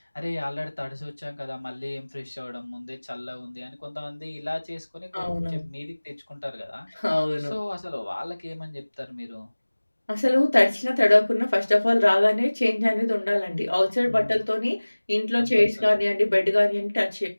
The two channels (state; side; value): inverted; both; correlation -1.00